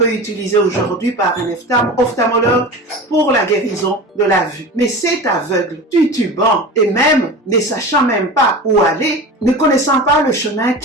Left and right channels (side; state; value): both; normal; correlation 0.32